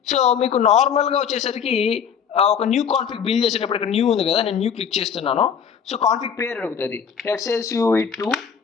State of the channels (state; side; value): quieter; right; 7.3 dB